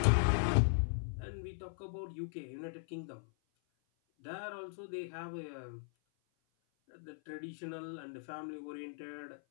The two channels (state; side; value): silent; right; 52 dB below the other